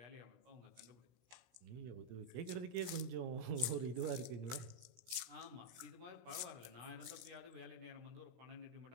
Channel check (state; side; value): late; left; 16 ms